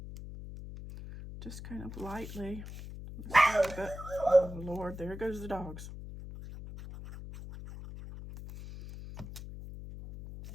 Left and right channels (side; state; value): left; noise; hum, 11 dB below the sound